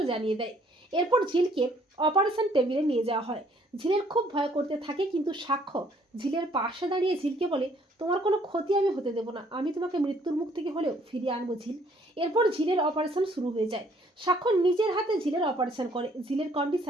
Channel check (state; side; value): normal; both; correlation 0.63